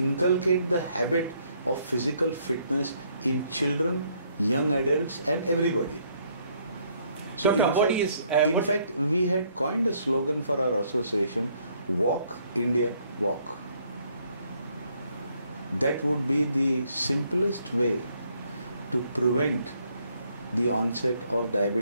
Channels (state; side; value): inverted; both; correlation -0.68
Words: the habit of physical fitness in children, young adults and everybody. So in fact, we had coined a slogan for our association, Walk India Walk. That would be the simplest way to prevent the onset of